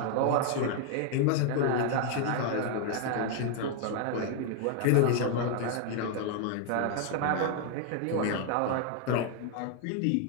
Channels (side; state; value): both; different; correlation 0.00